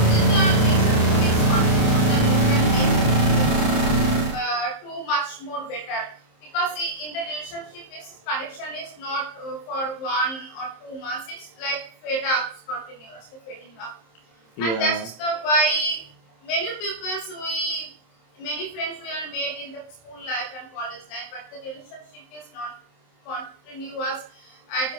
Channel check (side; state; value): right; late; 27 ms